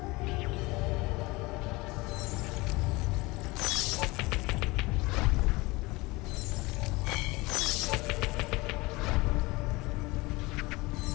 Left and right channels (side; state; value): right; quieter; 22.9 dB